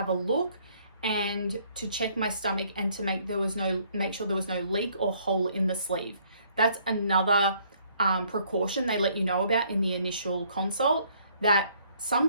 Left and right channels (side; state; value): both; inverted; correlation -0.64